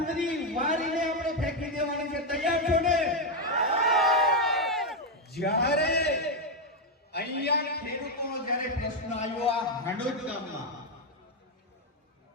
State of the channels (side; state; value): both; normal; correlation 0.03